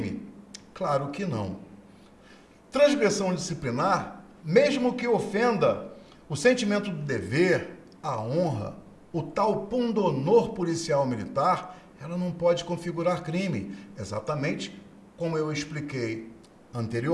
Claro que não. Transgressão disciplinar, mesmo que ofenda o sentimento do dever, a honra, o tal pundonor policial militar, ela não pode configurar crime. Exatamente como eu expliquei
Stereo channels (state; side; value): identical; both; correlation 1.00